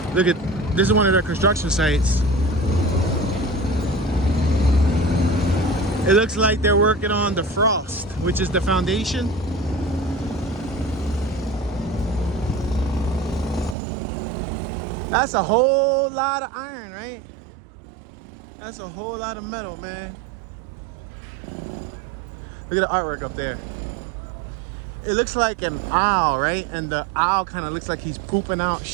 Look at, this is one of their construction sites. It looks like they're working on the frost, which is the foundation. That's a whole lot of iron, right? That's a whole lot of metal, man. Look at the artwork up there. It looks like an owl, right? And the owl kind of looks like he's pooping out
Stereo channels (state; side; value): drops out; left; at 13.8 s